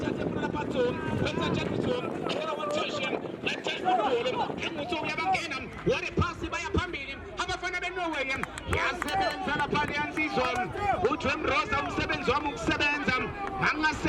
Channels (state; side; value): identical; both; correlation 1.00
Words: funa lapha Tom benza njani Tom ela one-touching engutho uyabangena ware phasi baya phambili abafana beNorway yasebenza lapha liyansizwa uJwem Rosa umsebenzi wami ukusebenza